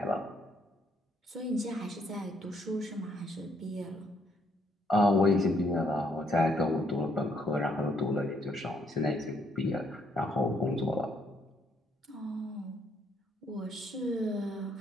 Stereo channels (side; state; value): both; normal; correlation 0.70